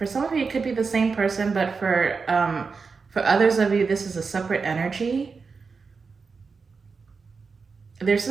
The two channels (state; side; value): quieter; left; 4.9 dB